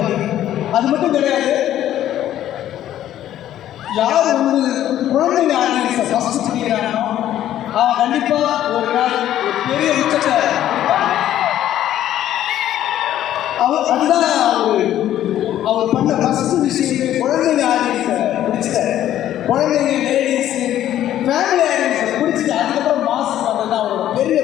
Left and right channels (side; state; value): right; quieter; 12.1 dB